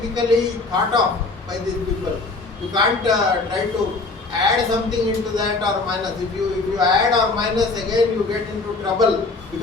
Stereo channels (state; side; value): quieter; right; 3.6 dB